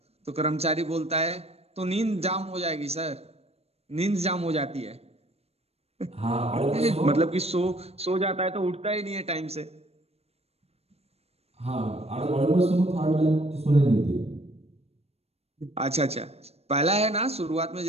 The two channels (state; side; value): late; left; 0.30 ms